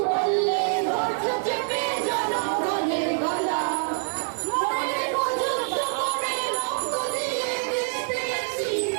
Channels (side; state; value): left; silent; 61 dB below the other